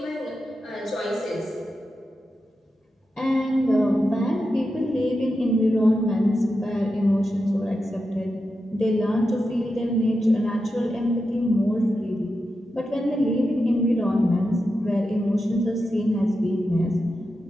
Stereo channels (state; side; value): normal; both; correlation 0.89